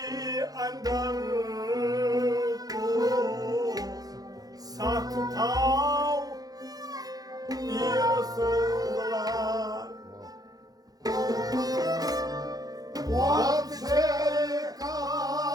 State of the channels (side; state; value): left; late; 0.18 ms